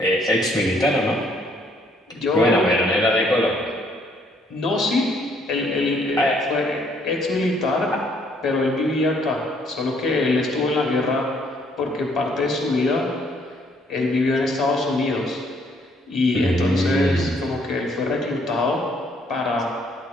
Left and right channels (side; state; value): both; normal; correlation 0.66